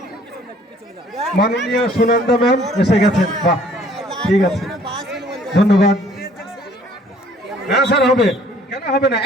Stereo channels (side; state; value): both; normal; correlation 0.57